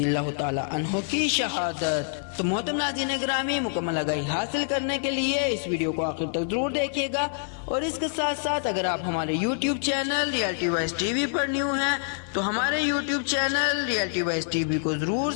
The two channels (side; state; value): right; silent; digital silence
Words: اللہ تعالی عنہ کی شہادت۔ تو محترم ناظرین گرامی، مکمل آگاہی حاصل کرنے کے لیے اس ویڈیو کو آخر تک ضرور دیکھیے گا، اور اس کے ساتھ ساتھ اگر آپ ہمارے YouTube channel reality voice TV وی پر نیو ہیں تو ہمارے YouTube channel reality voice TV وی کو ضرور